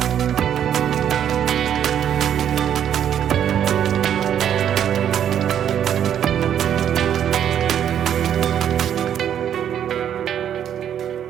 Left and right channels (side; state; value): left; quieter; 9.6 dB